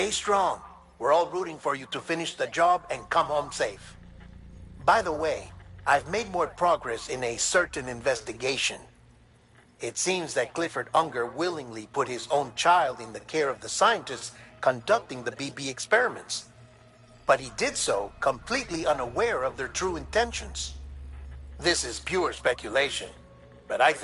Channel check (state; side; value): identical; both; correlation 1.00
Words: strong. We're all rooting for you to finish the job and come home safe. By the way, I've made more progress in a certain investigation. It seems that Clifford Unger willingly put his own child in the care of the scientists conducting the BB experiments. But he did so completely unaware of their true intentions. This is pure speculation, but I